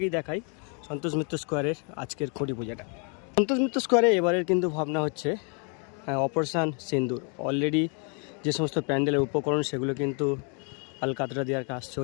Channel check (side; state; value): right; quieter; 38.3 dB